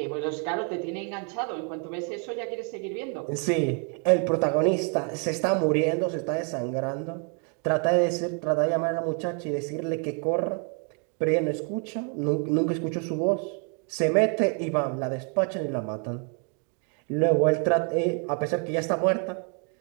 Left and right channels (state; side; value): quieter; left; 39.1 dB